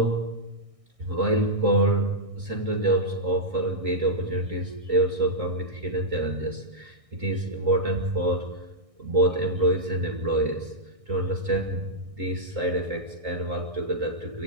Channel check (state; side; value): late; left; 1.6 ms